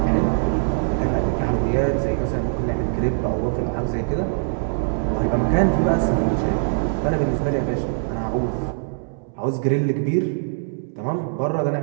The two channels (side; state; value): left; silent; 64 dB below the other